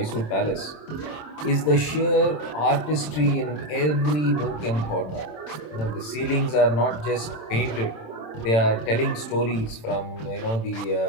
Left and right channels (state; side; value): late; right; 27 ms